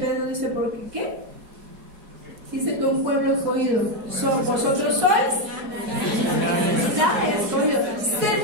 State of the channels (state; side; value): late; left; 4.8 ms